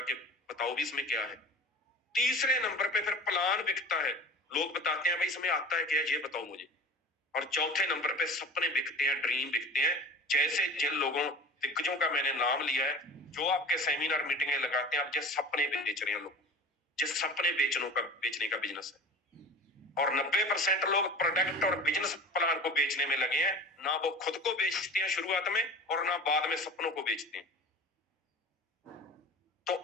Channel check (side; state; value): both; normal; correlation 0.38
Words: के बताओ भी इसमें क्या है। तीसरे नंबर पे फिर प्लान बिकता है, लोग बताते हैं भाई इसमें आता है क्या, ये बताओ मुझे। और चौथे नंबर पे सपने बिकते हैं, ड्रीम बिकते हैं। जैसे जिन लोगों दिग्गजों का मैंने नाम लिया है, जो आपके सेमिनार मीटिंगें लगाते हैं, आप जिस सपने बेच रहे हैं लोग, जिस सपने बेचने का बिजनेस है। और 90% लोग प्रोडक्ट और बिजनेस प्लान को बेचने में लगे हैं। ना वो खुद को बेचते हैं शुरुआत में, और ना बाद में सपनों को बेचते हैं। तो